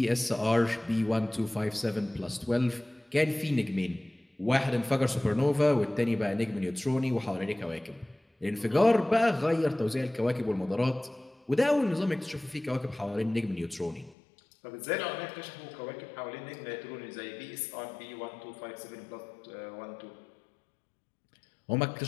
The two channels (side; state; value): right; drops out; at 14.2 s